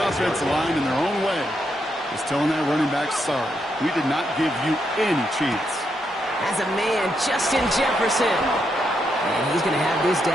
offensive line in their own way is telling that running back, sorry, we did not give you any chance. As a man, Justin Jefferson. And he's going to have this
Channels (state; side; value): normal; both; correlation 0.80